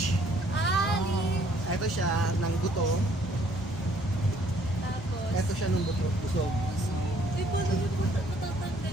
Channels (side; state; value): both; normal; correlation 0.63